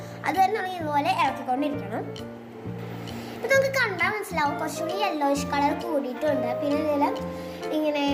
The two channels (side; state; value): both; identical; correlation 1.00